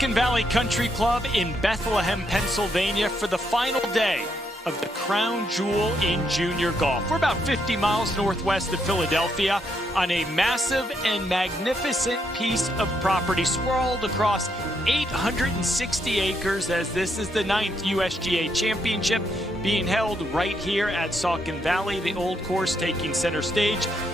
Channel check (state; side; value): normal; both; correlation 0.77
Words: Valley Country Club in Bethlehem, Pennsylvania for the final day of the crown jewel in junior golf. We're about 50 miles northwest of Philadelphia on a massive and magnificent piece of property sprawled across 860 acres, as this is the 9th USGA Championship being held right here at Saucon Valley, the old course taking center stage.